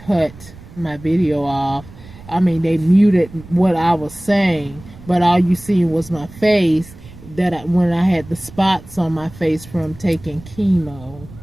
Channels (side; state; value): right; noise; rumble, 19 dB below the sound